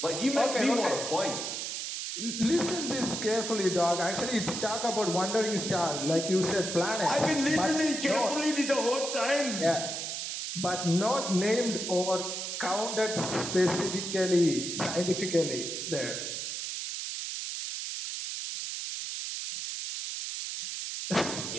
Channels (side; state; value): right; noise; hiss, 4 dB below the sound